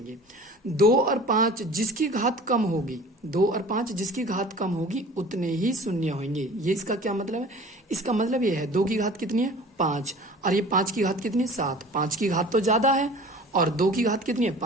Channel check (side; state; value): both; normal; correlation 0.43